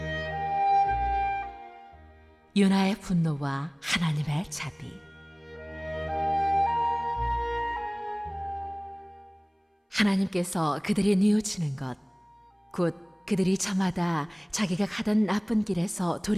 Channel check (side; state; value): both; identical; correlation 1.00